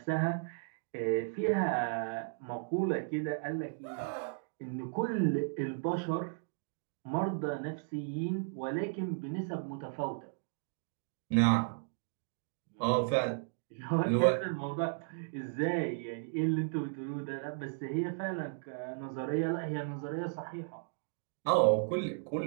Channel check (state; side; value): silent; left; digital silence